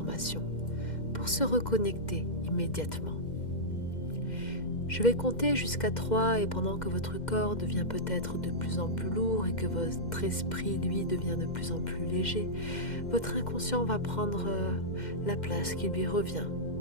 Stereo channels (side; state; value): right; late; 2.1 ms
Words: pour se reconnecter immédiatement. Je vais compter jusqu'à 3 et pendant que votre corps devient peut-être de plus en plus lourd et que votre esprit, lui, devient de plus en plus léger, votre inconscient va prendre la place qui lui revient.